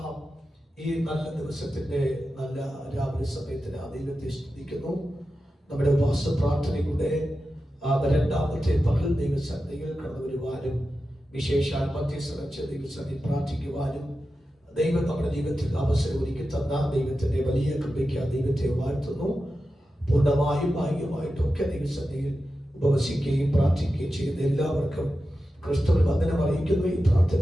ഈ നല്ല ദിവസത്തിന്റെ നല്ല രാവിലെ സമയത്തിന് ദൈവത്തെ സ്തുതിക്കുന്നു. നമ്മുടെ ഉപവാസ പ്രാർത്ഥനയുടെ രണ്ടാമത്തെ പകൽ ദൈവസന്നിധിയിൽ കടന്നു വരുവാനും വിശേഷാൽ മധ്യസ്ഥ ദൈവസന്നിധി പ്രാർത്ഥിക്കുവാനും ദൈവം നമ്മുടെ ജീവിതത്തിൽ അവസരം ഒരുക്കി തന്ന ദൈവത്തിന്റെ വലിയ കൃപയ്ക്ക് ദൈവത്തെ വാഴ്ത്തുന്നു. പൂർണ്ണമായും ഭാഗ്യമായിട്ടൊക്കെ ദൈവസന്നിധിയിൽ ഉപവസിക്കുകയും പ്രാർത്ഥിക്കുകയും ചെയ്യുന്ന എല്ലാവർക്കും ക്രിസ്തുവിൽ വന്ദനം അറിയിക്കുന്നു. ഈ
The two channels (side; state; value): both; normal; correlation 0.92